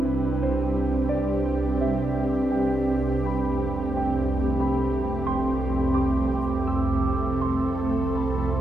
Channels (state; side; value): normal; both; correlation 0.84